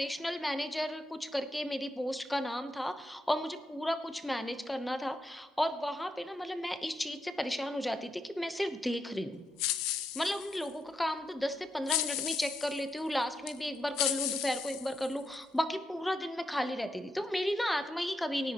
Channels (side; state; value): both; normal; correlation 0.83